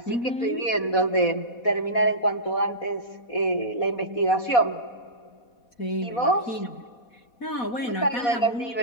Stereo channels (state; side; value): late; right; 4.1 ms